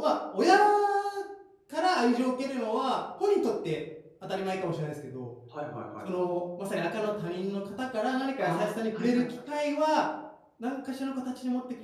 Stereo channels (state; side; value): identical; both; correlation 1.00